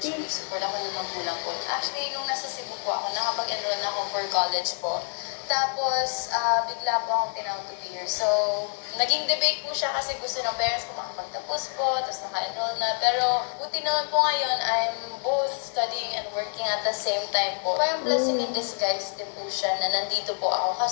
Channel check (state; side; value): silent; right; digital silence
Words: Ate. support ako ng magulang po. Actually, nung nasa Cebu po ako, nakapag-enroll na ako for college po. Tapos, bigla po akong tinawag to be here. So, naging debate po siya kasi gusto ng parents ko makapagtapos po, tapos naka-enroll na. Pero, buti naman po ngayon, I'm both studying and working at the same time po. Parang blessing in disguise din po siya na nandito po ako.